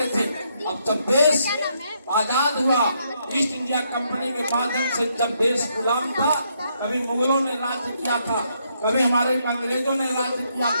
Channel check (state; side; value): inverted; both; correlation -0.75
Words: थे। अब जब देश आजाद हुआ, ईस्ट इंडिया कंपनी के माध्यम से जब देश गुलाम था, कभी मुगलों ने राज्य किया था, कभी हमारे अंग्रेजों ने राज्य किया